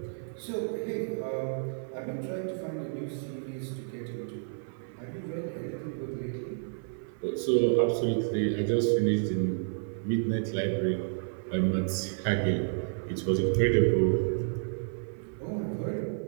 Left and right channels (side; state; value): left; silent; 57 dB below the other